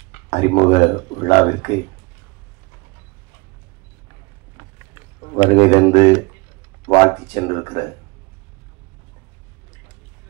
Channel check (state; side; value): quieter; left; 26.6 dB